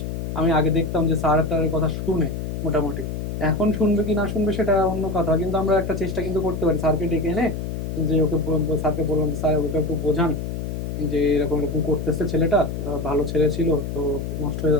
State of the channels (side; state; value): left; noise; hum, 4 dB below the sound